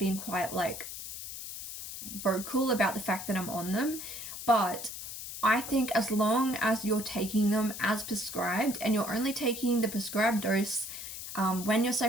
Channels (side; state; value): left; noise; hiss, 9 dB below the sound